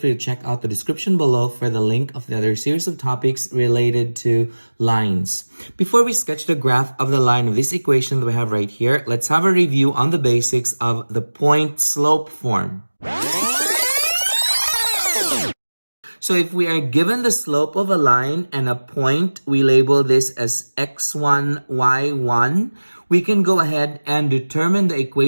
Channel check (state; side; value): inverted; both; correlation -1.00